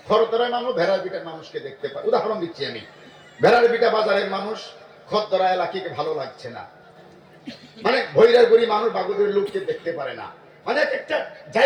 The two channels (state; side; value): identical; both; correlation 1.00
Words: খরদরায় মানুষ ভেড়ার বিটার মানুষকে দেখতে পায়, উদাহরণ দিচ্ছি আমি। ভেড়ার বিটা বাজারের মানুষ খদ্দরা এলাকাকে ভালো লাগছে না, মানে ভৈরার গুড়ি মানুষ বাগুদের লোককে দেখতে পারে না, মানে এক একটা